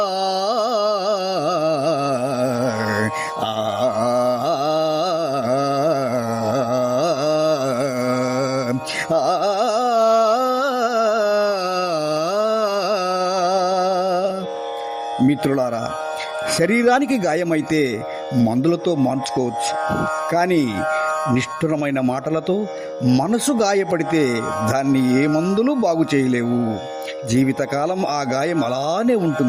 మిత్రులారా, శరీరానికి గాయమైతే మందులతో మార్చుకోవచ్చు, కానీ నిష్ఠురమైన మాటలతో మనసు గాయపడితే దాన్ని ఏ మందులు బాగు చేయలేవు. జీవితకాలం ఆ గాయం అలానే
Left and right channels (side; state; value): both; identical; correlation 1.00